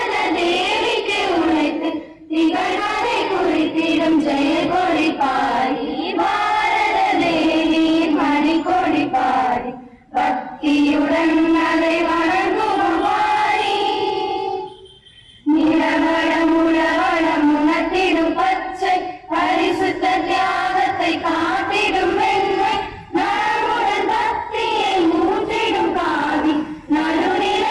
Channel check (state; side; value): identical; both; correlation 1.00